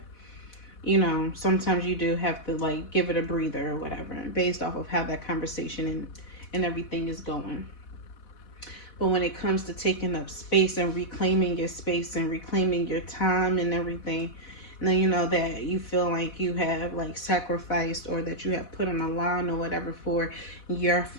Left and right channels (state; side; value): late; right; 4.1 ms